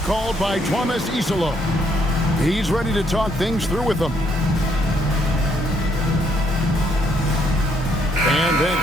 by Thomas Isolo. He's ready to talk things through with them. And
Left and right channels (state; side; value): normal; both; correlation 0.71